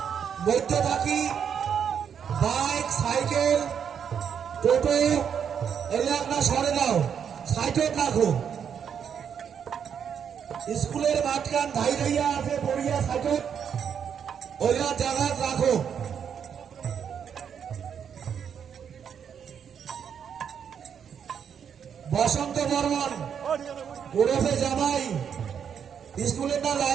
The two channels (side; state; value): left; quieter; 7.8 dB